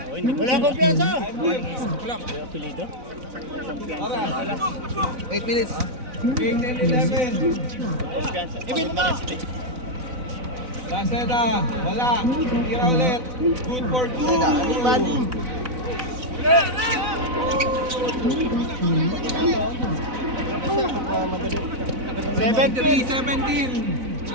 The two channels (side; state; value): left; late; 4.0 ms